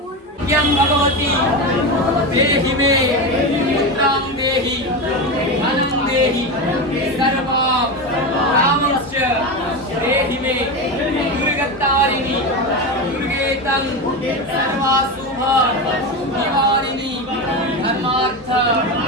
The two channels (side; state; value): both; normal; correlation 0.19